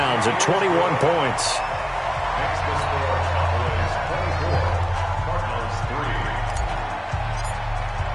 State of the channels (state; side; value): identical; both; correlation 1.00